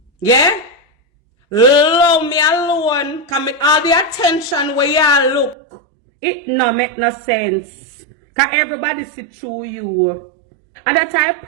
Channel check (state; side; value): drops out; left; at 5.6 s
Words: Yeah? Leave me alone. Can make all the attention where you look. It no make no sense. Can everybody see through you. And that's a